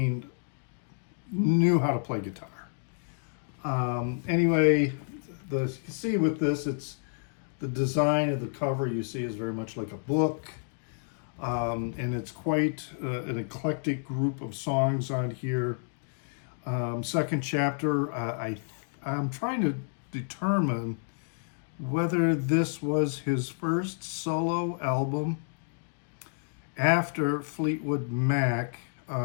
knew how to play guitar. Anyway, you can see with this, it's the design of the cover you see is very much like a book. And it's quite an eclectic group of songs on here. Second Chapter, I'm trying to determine whether this was his first solo album after Fleetwood Mac,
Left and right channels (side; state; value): right; silent; digital silence